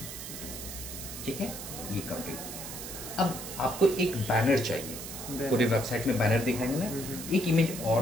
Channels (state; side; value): noise; right; hiss, 9 dB below the sound